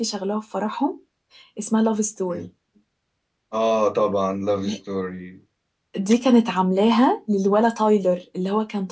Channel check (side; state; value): both; identical; correlation 1.00